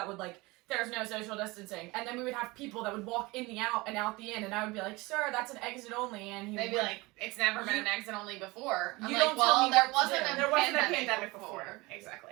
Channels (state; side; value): quieter; left; 23.0 dB